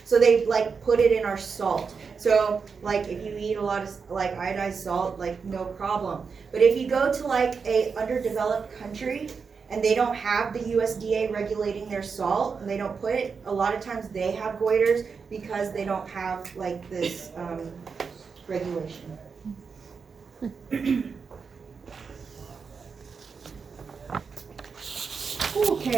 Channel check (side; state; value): left; quieter; 5.5 dB